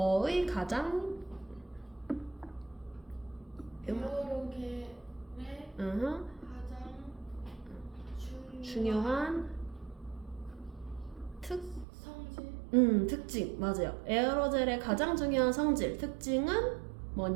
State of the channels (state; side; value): drops out; left; at 11.9 s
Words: 가장 에어로겔의 가장 중요한 특징, 맞아요. 에어로젤의 가장 중요한 성질, 특징은